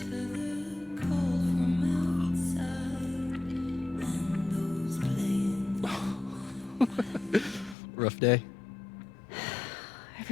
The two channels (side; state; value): right; drops out; at 7.8 s